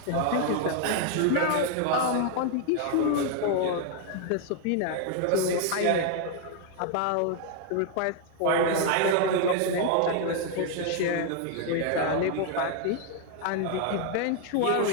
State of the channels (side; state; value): both; different; correlation 0.00